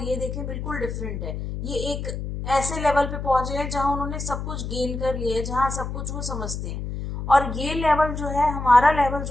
ये देखें बिल्कुल डिफरेंट है। ये एक ऐसे लेवल पे पहुंचे हैं जहां उन्होंने सब कुछ गेन कर लिया है, जहां सब कुछ वो समझते हैं। और ये लेवल जो है, हमारा लेवल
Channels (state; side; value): noise; left; hum, 5 dB below the sound